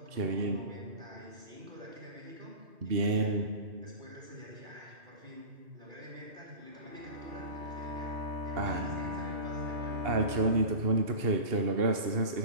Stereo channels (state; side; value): late; left; 2.7 ms